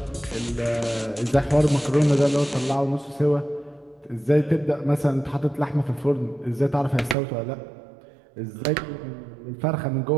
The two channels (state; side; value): drops out; left; at 7.2 s